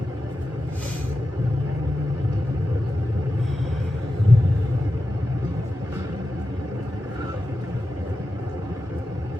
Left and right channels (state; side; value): normal; both; correlation 0.91